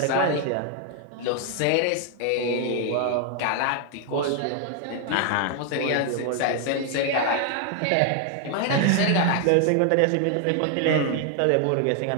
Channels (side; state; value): both; different; correlation 0.00